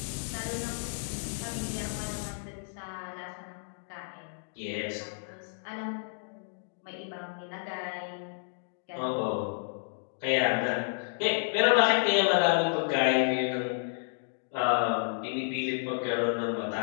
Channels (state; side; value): silent; right; digital silence